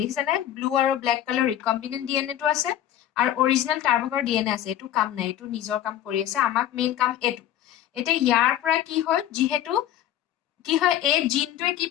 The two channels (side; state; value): right; quieter; 11.7 dB